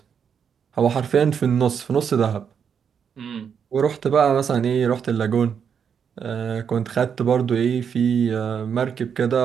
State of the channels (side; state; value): left; quieter; 7.3 dB